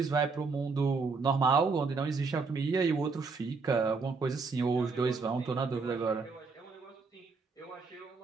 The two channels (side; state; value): left; quieter; 4.5 dB